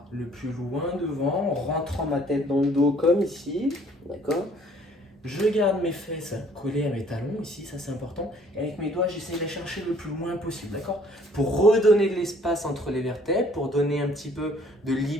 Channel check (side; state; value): both; normal; correlation 0.59